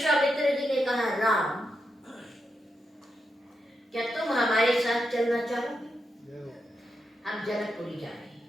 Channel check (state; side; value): normal; both; correlation 0.85